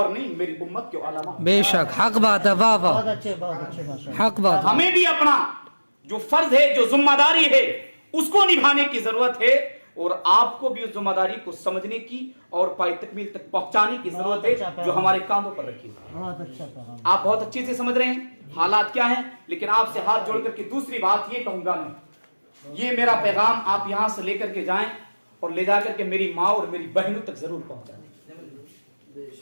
نہیں، میری امت کے علماء۔ بے شک حق بات ہے، واہ واہ، حق بات۔ ہمیں بھی اپنا جو فرض ہے، جو ذمہ داری ہے اس کو نبھانے کی ضرورت ہے، اور آپ کو بھی اس ذمہ داری کو سمجھنے کی اور پائے تکمیل تک پہنچانے کی ضرورت ہے جو ہمارے کاندھوں پر رکھی ہے۔ آپ بہت اچھے سے سمجھ رہے ہیں حالات کیا ہیں، لیکن آپ سے ہاتھ جوڑ کر کے دوسری بات یہ کہوں گا میں، یہ میرا پیغام آپ یہاں سے لے کر کے جائیں اور لے جا کر کے میری ماں اور میری بہنوں تک ضرور پہنچا دیں۔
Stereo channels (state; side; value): inverted; both; correlation -1.00